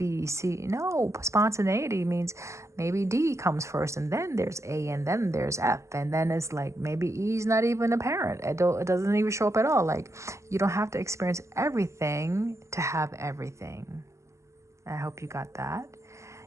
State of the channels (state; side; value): late; left; 0.14 ms